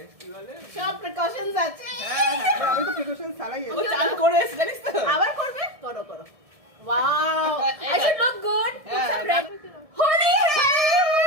কি বলে সব প্রিকশনস আছে। হ্যাঁ হ্যাঁ আমি তো প্রিকশন ছাড়াই ও চান করে এসে জানিস তো আবার করবে? করো করো। Wow I should look good. হ্যাঁ, হোলি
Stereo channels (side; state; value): left; late; 1.7 ms